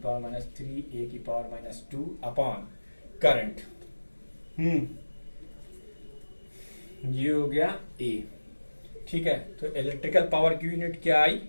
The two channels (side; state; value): both; inverted; correlation -1.00